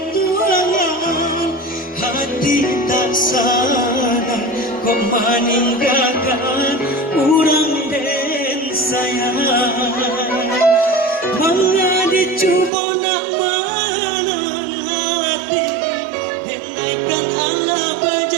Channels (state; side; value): drops out; left; at 12.7 s